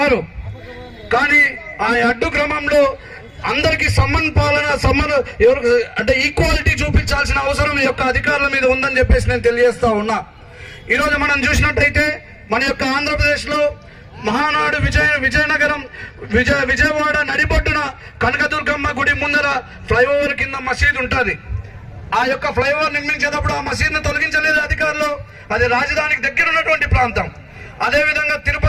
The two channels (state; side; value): identical; both; correlation 1.00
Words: కానీ ఆ అడ్డు క్రమంలో అందరికీ ఎవరు అంటే ఈక్వాలిటీ చూపించాల్సిన అవసరం ఈ యొక్క అధికారుల మీద ఉందని చెప్పేసి నేను తెలియజేస్తా ఉన్నా. ఈరోజు మనం చూసినట్టయితే మన యొక్క ఆంధ్రప్రదేశ్ లో మహానాడు విజయనగరం విజయవాడ నడిబొడ్డున కనకదుర్గమ్మ గుడి ముందర ఫ్లైఓవర్ కింద మసీద్ ఉంటుంది. ఆ యొక్క ఫ్లైఓవర్ నిర్మించేటప్పుడు ఆ మసీదును తొలగించలేదు అధికారులు. అది రాజధానికి దగ్గర ఉన్నటువంటి ప్రాంతం. అదే విధంగా